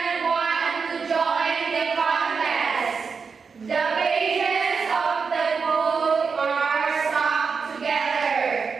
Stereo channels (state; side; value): quieter; left; 5.4 dB